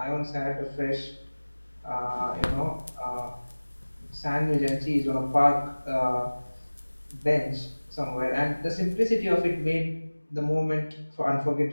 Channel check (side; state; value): both; inverted; correlation -1.00